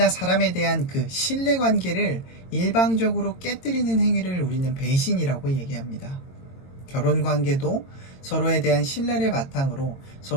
사람에 대한 그 신뢰관계를 일방적으로 깨뜨리는 행위를 우리는 배신이라고 얘기합니다. 결혼관계도 서로에 대한 신뢰를 바탕으로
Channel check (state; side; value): late; right; 22 ms